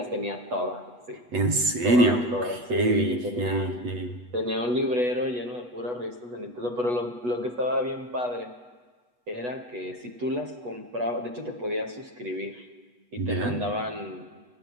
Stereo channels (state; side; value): late; left; 8.2 ms